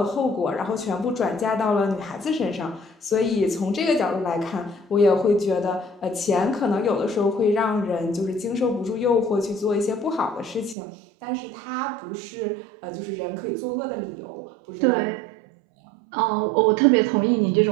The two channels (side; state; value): left; drops out; at 10.8 s